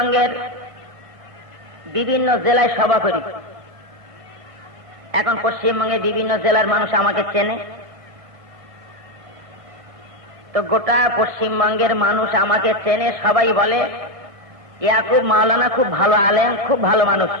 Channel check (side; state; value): left; late; 1.5 ms